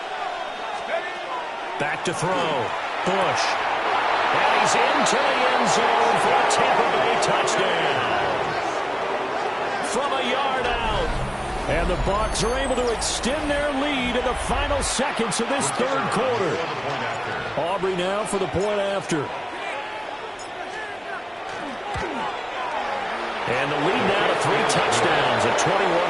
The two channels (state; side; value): identical; both; correlation 1.00